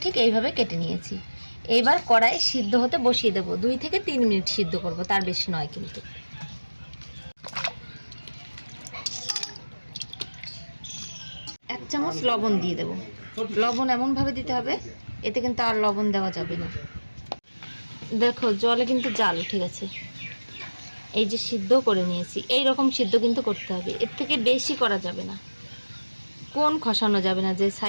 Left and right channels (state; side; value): inverted; both; correlation -1.00